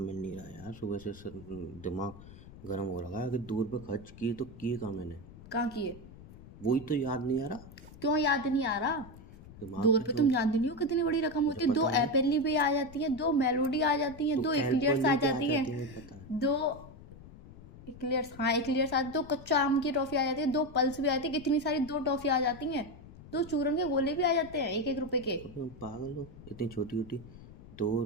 नहीं रहा यार, सुबह से दिमाग गर्म हो रहा है कि 2 रुपये खर्च किए तो किए कहाँ मैंने। कहाँ किए? वही तो याद नहीं आ रहा। क्यों याद नहीं आ रहा? दिमाग 2 रुपए तो तुम जानती नहीं हो कितनी बड़ी रकम मुझे होती है। पता 2 है। एपेली भी आ जाती है, 2 मेलोडी आ जाती है, तो 2 एक्लियर्स आ कैलकुलेट आ जाती है, जाती है, पता है। 2 एक्लियर्स, हाँ एक्लियर्स आती, 2 कच्चा आम की टॉफी आ जाती है, 2 पल्स भी आती है, कितनी सारी 2 टॉफी आ जाती हैं, 2 चूरन के गोले भी आ जाते हैं 1-1 रुपए के। अबे तुम पागल हो, इतनी छोटी छोटी 2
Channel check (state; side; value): noise; left; rumble, 18 dB below the sound